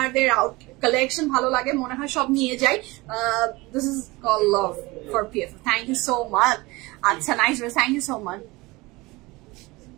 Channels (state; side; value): quieter; left; 22.5 dB